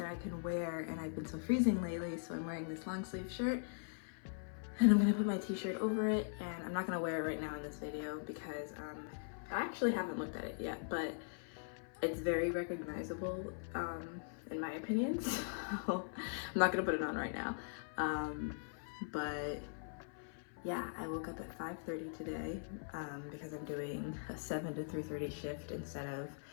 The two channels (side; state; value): right; silent; 50 dB below the other